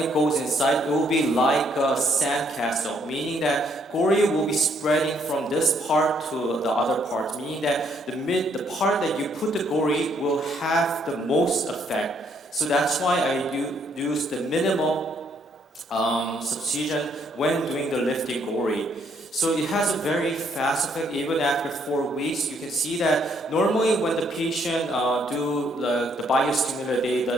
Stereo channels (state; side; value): normal; both; correlation 0.69